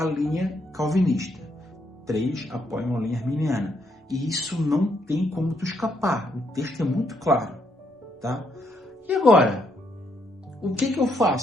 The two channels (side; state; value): both; normal; correlation 0.75